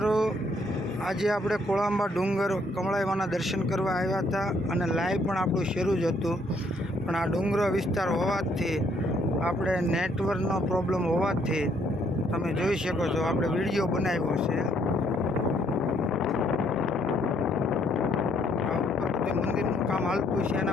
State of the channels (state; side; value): normal; both; correlation 0.68